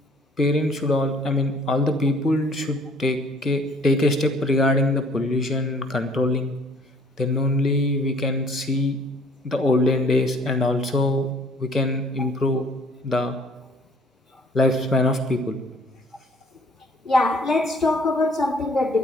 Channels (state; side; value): normal; both; correlation 0.56